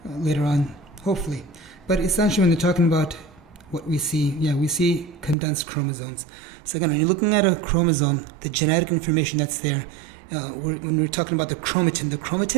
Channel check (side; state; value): left; drops out; at 5.4 s